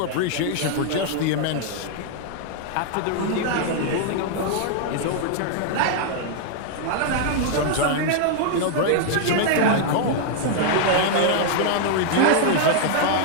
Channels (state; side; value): different; both; correlation 0.00